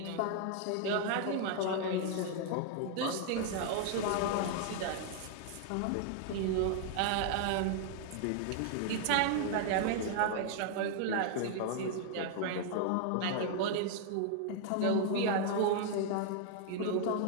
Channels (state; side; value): different; both; correlation 0.00